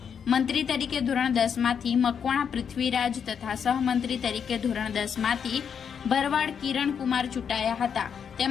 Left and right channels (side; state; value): right; quieter; 7.3 dB